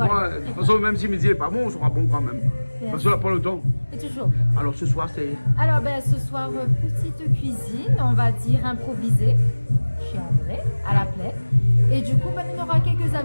Moi, de toute façon, même si midi n'est pas bon, on sera bon quand même. Parce qu'on n'a pas le temps. Et toujours. Alors ce soir, c'est. Alors, ben, ce soir, petite cuisine, on va dire improvisée, chez André, à la plaie. Et du coup, ben, on aura quelques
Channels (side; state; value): both; inverted; correlation -1.00